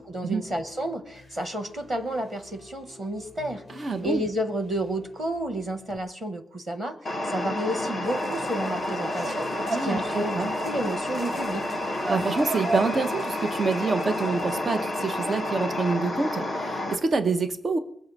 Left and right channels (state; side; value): normal; both; correlation 0.81